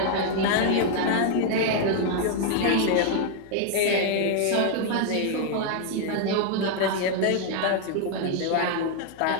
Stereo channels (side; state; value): both; different; correlation 0.00